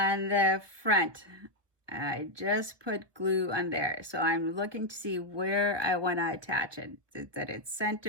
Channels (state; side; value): late; left; 1.4 ms